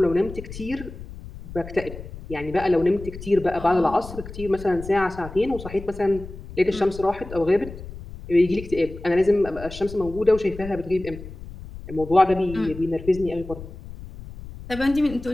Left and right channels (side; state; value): left; noise; rumble, 13 dB below the sound